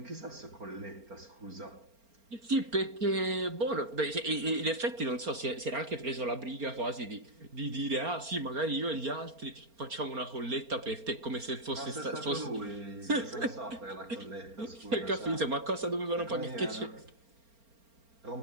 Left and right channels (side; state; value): left; late; 4.4 ms